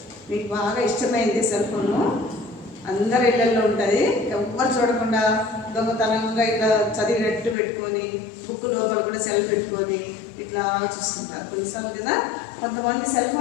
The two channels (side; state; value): right; drops out; at 7.6 s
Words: మీకు బాగా ఇష్టమైంది సెల్ ఫోను. అందరి ఇళ్ళల్లో ఉంటుంది. ఎవ్వరు చూడకుండా దొంగతనంగా ఇట్లా చదివినట్టు పెట్టుకొని, బుక్ లోపల కూడా సెల్ పెట్టుకొని ఇట్లా చూస్తుంటారు కొన్నిసార్లు కదా. కొంతమంది సెల్